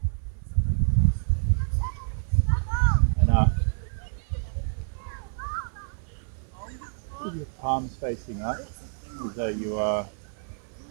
and up, with your palms facing up as though you are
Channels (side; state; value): left; silent; 60 dB below the other